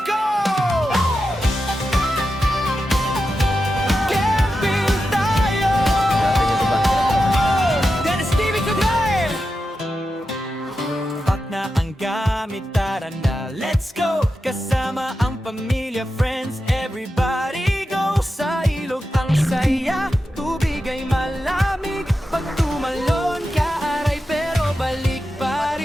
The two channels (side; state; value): both; normal; correlation 0.90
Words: Gamit, tara na, let's go! Kasama ang pamilya, friends, everybody go! Sa ilog ang saya, tubig ay malamig. Pag tumalon ka, aray pero balik pa